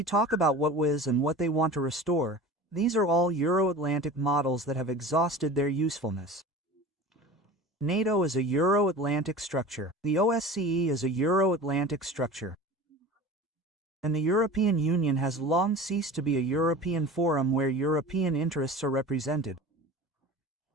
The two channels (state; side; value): normal; both; correlation 0.36